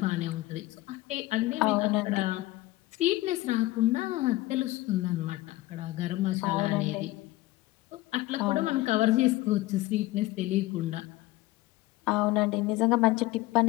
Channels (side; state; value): right; quieter; 18.2 dB